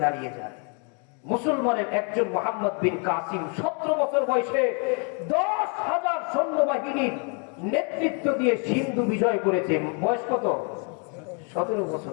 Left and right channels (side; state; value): right; quieter; 37.5 dB